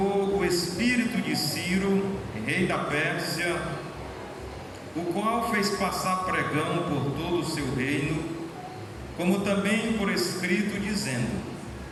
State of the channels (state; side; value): identical; both; correlation 1.00